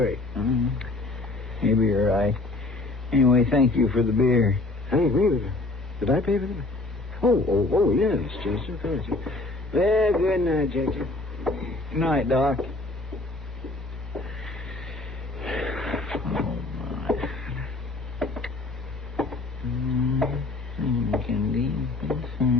Maybe you're right. Anyway, thank you for the beer. Thank me. Did I pay for them? Oh, yes, Chester. Thank you. Well, good night, Chester. Good night, Doc.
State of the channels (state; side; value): quieter; right; 3.0 dB